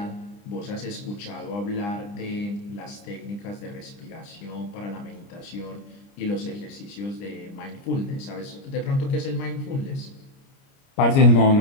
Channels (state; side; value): late; right; 30 ms